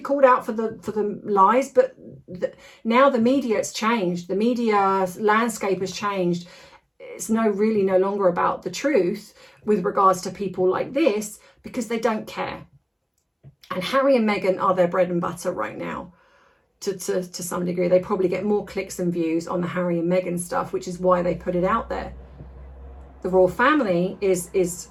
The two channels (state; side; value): identical; both; correlation 1.00